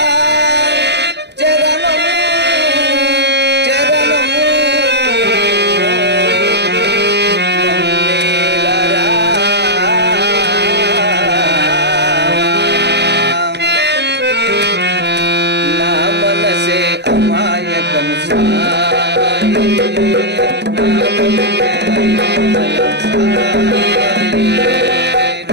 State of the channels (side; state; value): left; late; 0.50 ms